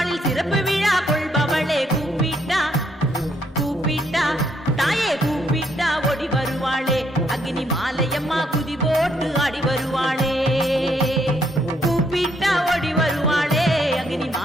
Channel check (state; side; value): normal; both; correlation 0.72